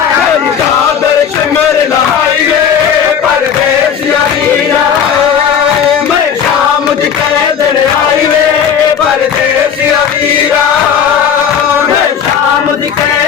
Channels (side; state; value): right; quieter; 7.8 dB